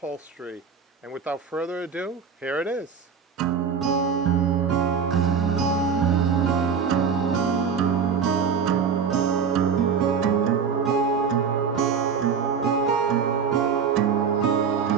And without further ado, here it is.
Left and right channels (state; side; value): quieter; left; 6.4 dB